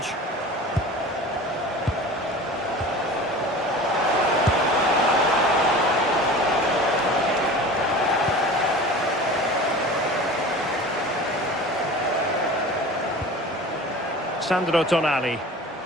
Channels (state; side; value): normal; both; correlation 0.38